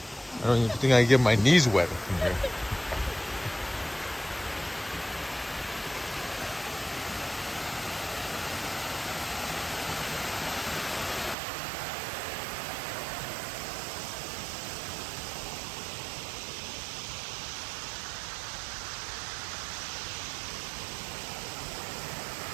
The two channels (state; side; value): drops out; left; at 11.4 s